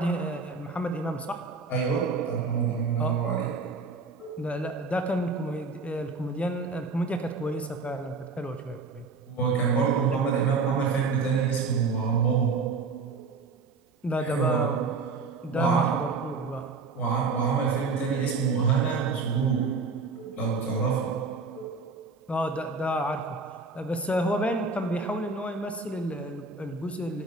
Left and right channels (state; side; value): quieter; left; 4.2 dB